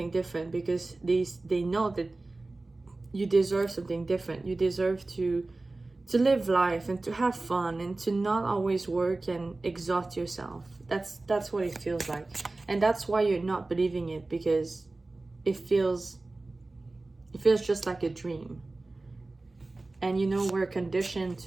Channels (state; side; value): quieter; left; 3.2 dB